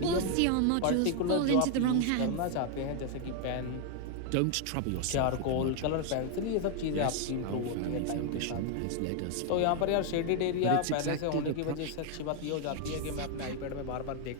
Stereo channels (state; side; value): different; both; correlation 0.00